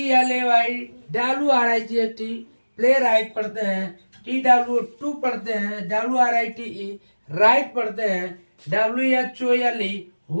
WRIGHT, प्ले राइट पढ़ते हैं। TW2 पढ़ते हैं। WRITE, राइट पढ़ते हैं। WHOLE,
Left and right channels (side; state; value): both; inverted; correlation -1.00